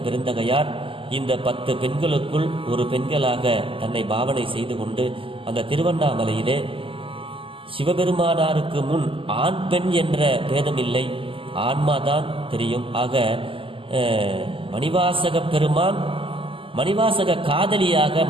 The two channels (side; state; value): left; late; 0.25 ms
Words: பெருந்தகையார் இந்த 10 பெண்களுக்குள் ஒரு பெண்களாக தன்னை பாவனை செய்து கொண்டு அந்த திருவண்ணாமலையிலே சிவபெருமானாருக்கு முன் ஆண் பெண் என்ற பேதமில்லை, ஆன்மாதான் தெரியும். ஆக மணிவாசக பெருமான் மணிவாசக காதலியாக